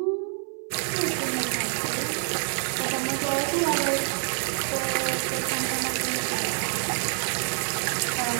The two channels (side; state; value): left; silent; 58 dB below the other